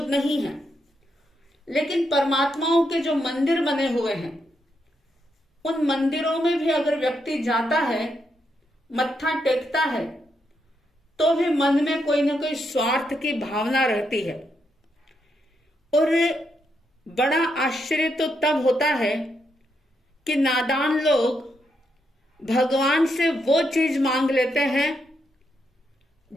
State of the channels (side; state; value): both; normal; correlation 0.80